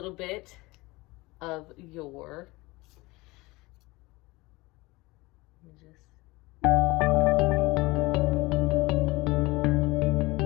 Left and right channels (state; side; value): quieter; right; 22.2 dB